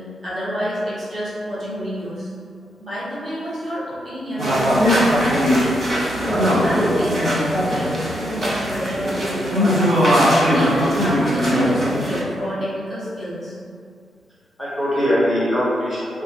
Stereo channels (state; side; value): normal; both; correlation 0.78